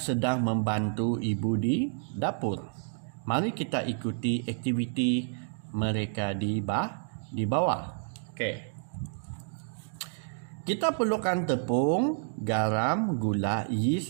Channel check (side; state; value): left; silent; digital silence